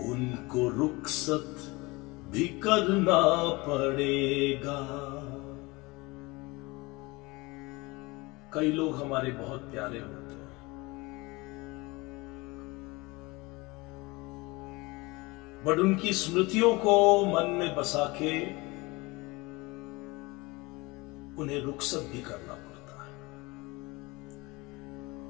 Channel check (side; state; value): right; quieter; 23.9 dB